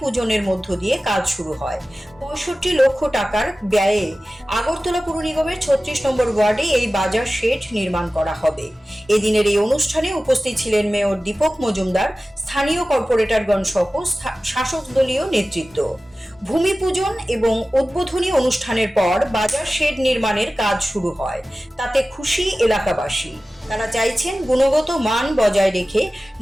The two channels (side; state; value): both; normal; correlation 0.96